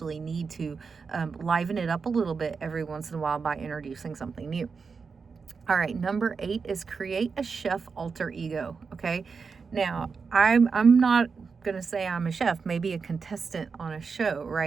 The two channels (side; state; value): left; quieter; 5.2 dB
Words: need to liven it up a little bit every once in a while by introducing something new. All right, number 8 is create a chef alter ego. Okay, now I'm not gonna say I'm a chef, maybe a contestant on a show,